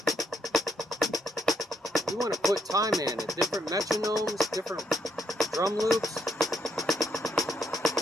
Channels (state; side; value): normal; both; correlation 0.75